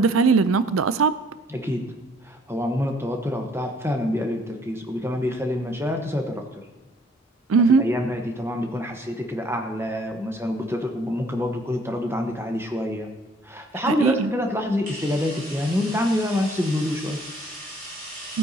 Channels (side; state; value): both; normal; correlation 0.60